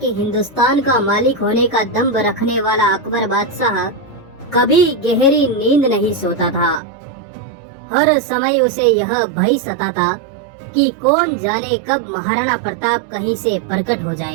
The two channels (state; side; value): drops out; left; at 6.8 s